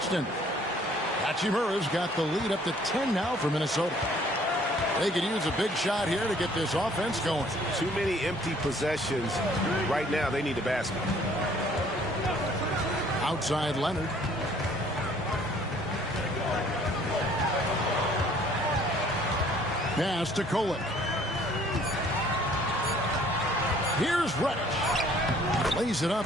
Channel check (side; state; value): both; normal; correlation 0.58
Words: Hachimura's got the lead up to 10 now for Minnesota. They could use a big shot here to get this offense going. Too many empty possessions. Right now, they need a basket. Outside Leonard. Pass to Kolek. Here's Reddish. Lays it